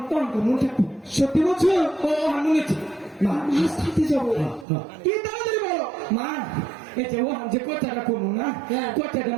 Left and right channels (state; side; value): drops out; left; at 4.7 s